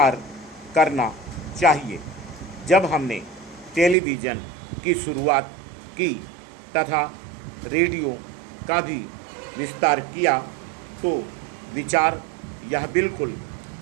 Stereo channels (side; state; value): left; drops out; at 4.0 s